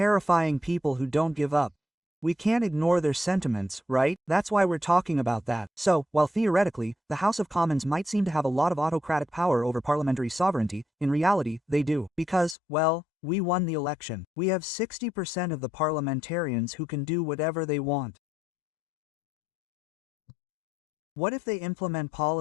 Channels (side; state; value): right; drops out; at 12.6 s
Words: people who don't give up. We can't ignore their sentiments, right? That's why we're talking about that. So, while theoretically, the House of Commons might seem to have a lot of autocratic power over parliamentary sovereignty, in reality, they do. Because, well, we won the election. We have 60% of the parliamentarians who can do whatever they want. What if they implement